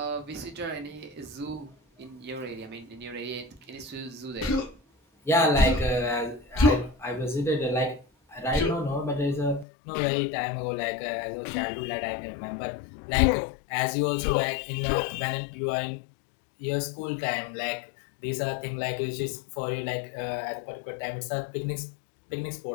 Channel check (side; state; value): right; drops out; at 9.7 s